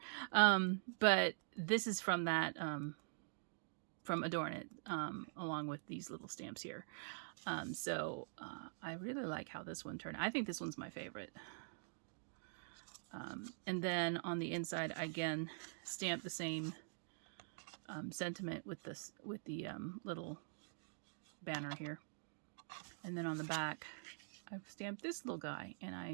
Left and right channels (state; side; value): silent; left; digital silence